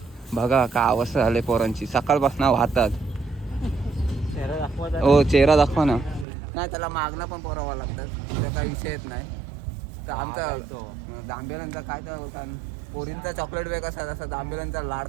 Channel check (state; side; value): drops out; left; at 6.2 s